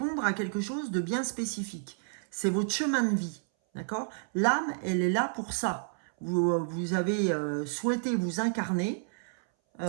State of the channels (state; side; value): silent; left; 58 dB below the other